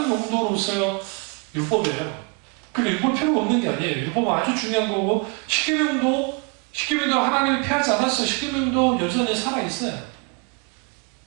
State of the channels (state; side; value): quieter; left; 31.7 dB